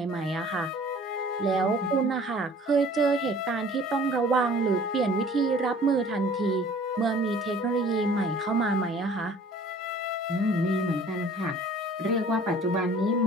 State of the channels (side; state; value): both; normal; correlation 0.51